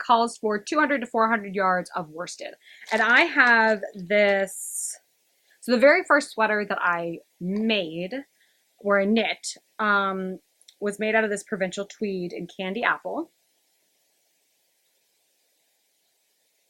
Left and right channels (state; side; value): identical; both; correlation 1.00